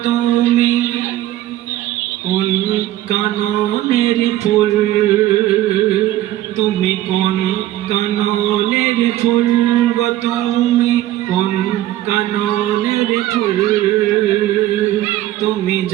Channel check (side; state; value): left; quieter; 14.3 dB